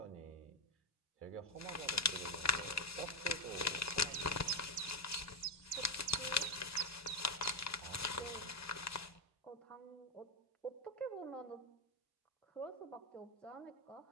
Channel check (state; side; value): normal; both; correlation 0.07